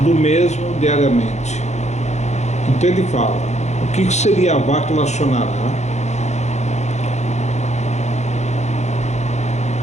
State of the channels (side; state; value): right; late; 0.33 ms